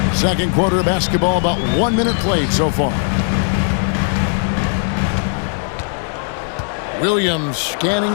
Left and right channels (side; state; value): right; silent; 56 dB below the other